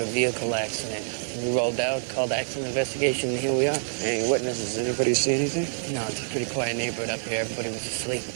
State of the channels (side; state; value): left; silent; 60 dB below the other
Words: vehicle accident. We rolled out, called accident investigation, and here we are. Any witnesses? Anybody see anything? No, it's a pretty quiet neighborhood up here. Everybody was asleep.